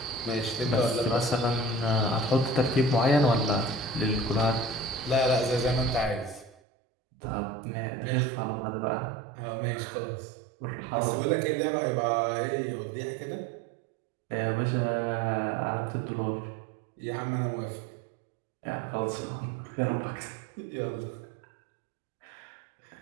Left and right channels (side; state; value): left; drops out; at 6.6 s